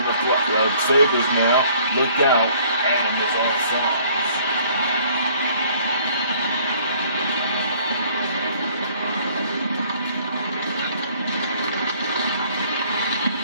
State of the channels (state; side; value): inverted; both; correlation -0.58